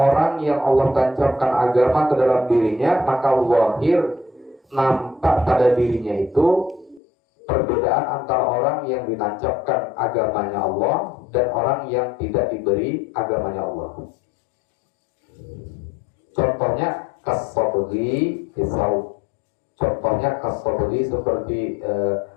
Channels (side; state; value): right; drops out; at 7.0 s